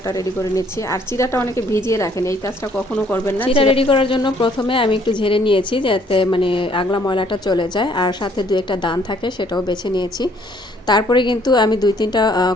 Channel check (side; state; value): both; normal; correlation 0.63